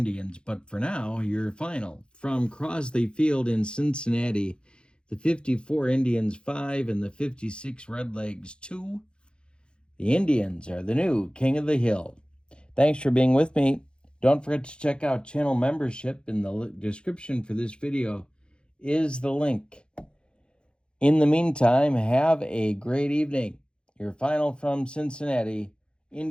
But for now, your final. From Crosley Field in Cincinnati, the 54 Indians 5 and the 56 Redlegs 2. The Indians are the new King of the Hill. Thanks for being with me. Don't forget to check out channel membership. In the description for this video is the link. In the meantime, have a great evening. Your final from Cincinnati.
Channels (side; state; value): right; late; 0.053 ms